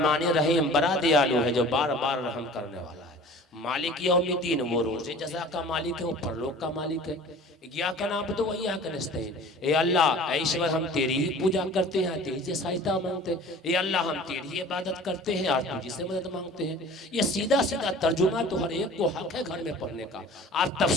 रहीम बड़ा दयालु है, जो बार बार रहम करने वाला है। मालिक यौमिद्दीन, वो रोज़े जज़ा का मालिक है, वो परलोक का मालिक है। इय्याका नअबुदु व इय्याका नस्तईन, ए अल्लाह, ए ईश्वर, हम तेरी ही पूजा करते हैं, तेरी से सहायता मांगते हैं। ए अल्लाह, हम तेरी ही इबादत करते हैं और तुझी से मदद मांगते हैं। ये सीधा सीधा तर्जुमा तो हर एक को हक है घर में पढ़ने का। आप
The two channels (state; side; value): normal; both; correlation 0.44